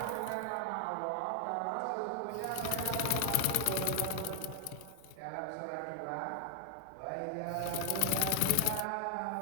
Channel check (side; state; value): both; different; correlation 0.00